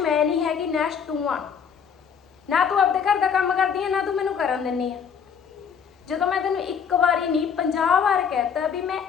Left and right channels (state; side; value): quieter; right; 7.0 dB